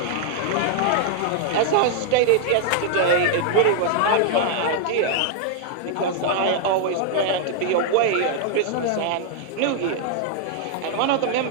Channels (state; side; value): different; both; correlation -0.01